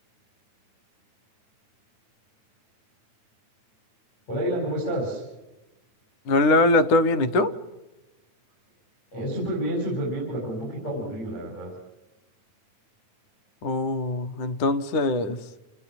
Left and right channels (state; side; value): late; right; 9.9 ms